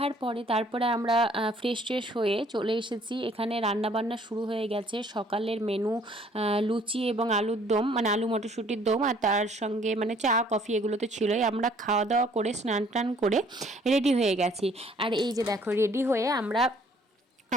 পরে তারপরে আমরা ফ্রেশ ট্রেশ হয়ে চলে এসেছি। এখানে রান্নাবান্না শুরু হয়ে গেছে। সকালের মেনু লুচি এবং আলুর দম, মানে আলু মটরশুঁটির দম, আর তার সঙ্গে মানে চা কফি এগুলো তো ছিলই। আমরা খাওয়া দাওয়া করে স্নান টান করে রেডি হয়ে গেছি। আর এই যে দেখো রেডি হয়ে আমরা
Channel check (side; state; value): both; normal; correlation 0.60